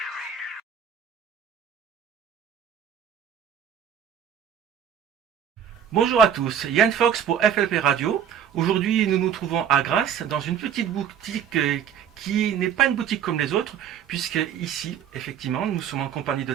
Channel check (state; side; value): quieter; left; 8.8 dB